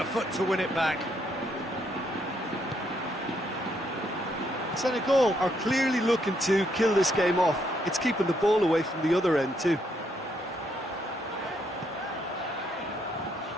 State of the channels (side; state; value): both; normal; correlation 0.74